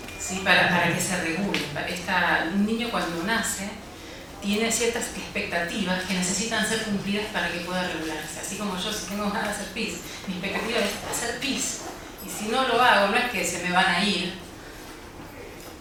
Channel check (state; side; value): identical; both; correlation 1.00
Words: ¿sí? Para que se regule. Un niño cuando nace tiene ciertas expectativas que necesitan ser cumplidas para que pueda regularse. Así como yo, si tengo ganas de hacer pis, mi expectativa es hacer pis. Y si no lo hago, no es que se me van a ir.